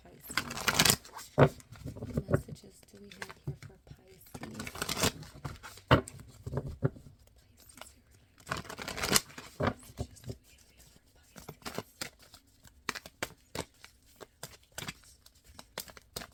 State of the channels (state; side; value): identical; both; correlation 1.00